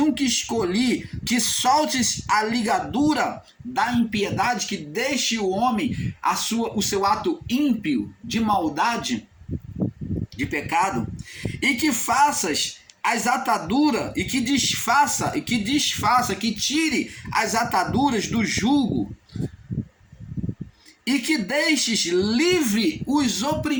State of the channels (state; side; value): identical; both; correlation 1.00